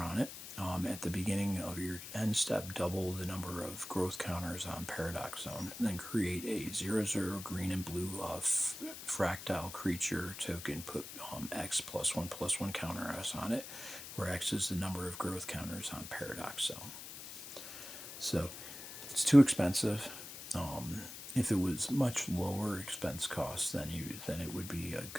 it. At the beginning of your end step, double the number of growth counters on Paradox Zone. Then create a 0/0 green and blue fractile creature token. Put X +1/+1 counter S on it, where X is the number of growth counters on Paradox Zone. So it's too expensive. If it was much lower expense cost, then it would be a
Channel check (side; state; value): left; noise; hiss, 11 dB below the sound